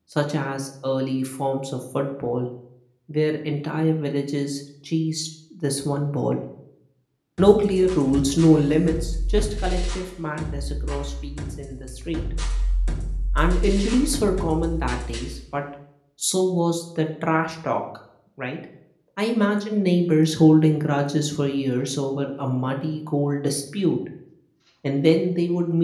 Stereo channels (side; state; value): both; identical; correlation 1.00